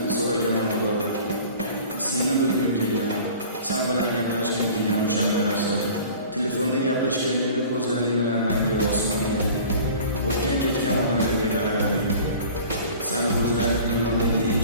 so'ragaman Xudodan. Seni bilgim kelgan, sen bilan gaplashgan kelgan o'shanda narsalar. Telefonda gaplashganingda ko'zlaring bilan menga osmonga, o'tgan ketgan odamlarga qararding. Seni ko'zlaring dunyodagi eng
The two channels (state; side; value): inverted; both; correlation -0.44